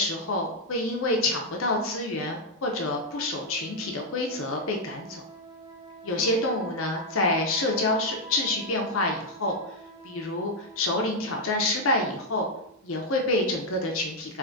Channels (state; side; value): normal; both; correlation 0.00